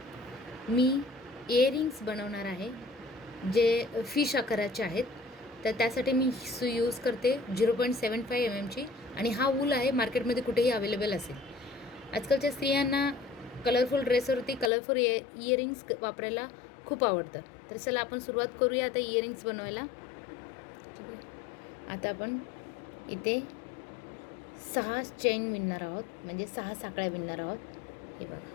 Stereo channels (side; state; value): right; drops out; at 14.7 s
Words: इयरिंग्स बनवणार आहे जे फिश आकाराचे आहेत. तर त्यासाठी मी सुई यूज करते 0.75 mm आणि हा वूल आहे, मार्केटमध्ये कुठेही अवेलेबल असेल. आजकालच्या स्त्रियांना कलरफुल ड्रेसवरती कलरफुल इयरिंग्स वापरायला खूप आवडतं. तर चला आपण सुरुवात करूया आता इयरिंग्स बनवायला. आता आपण इथे 6 चेन विणणार आहोत, म्हणजे 6 साखळ्या विणणार आहोत. हे बघा,